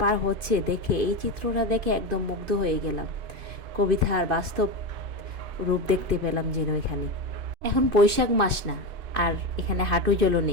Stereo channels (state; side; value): late; left; 2.6 ms